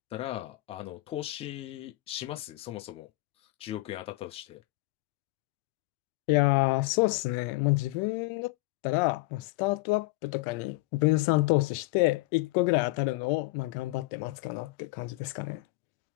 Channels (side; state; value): right; quieter; 21.1 dB